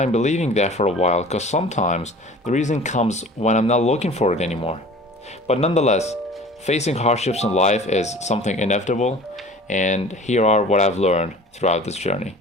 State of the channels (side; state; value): both; normal; correlation 0.44